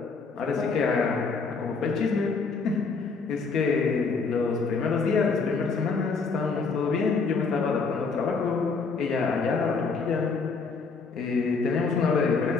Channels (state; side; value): quieter; right; 4.6 dB